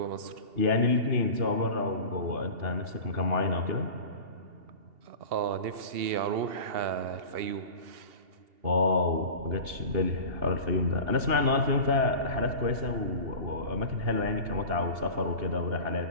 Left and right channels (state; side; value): late; left; 2.8 ms